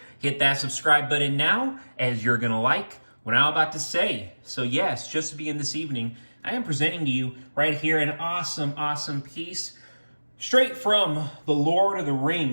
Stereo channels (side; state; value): both; inverted; correlation -1.00